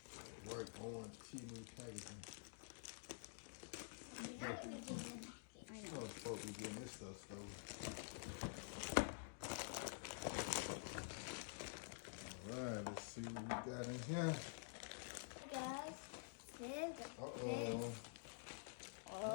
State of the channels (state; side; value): silent; right; digital silence